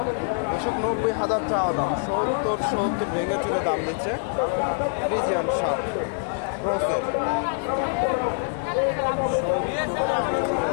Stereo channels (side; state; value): right; silent; digital silence